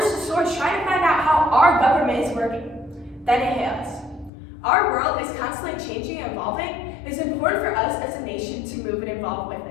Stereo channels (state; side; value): drops out; right; at 4.3 s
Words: to source trying to find out how our government is working. Then it hit us. Our world is constantly changing and evolving. It is important for us as a nation to move and evolve with